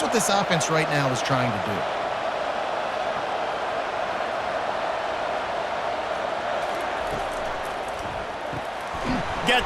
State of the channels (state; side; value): identical; both; correlation 1.00